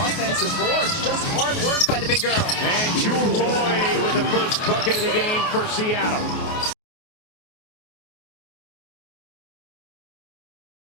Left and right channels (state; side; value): late; right; 28 ms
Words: boards. Just hard work by the big girl. And Jewel Lloyd with the first bucket of the game for Seattle.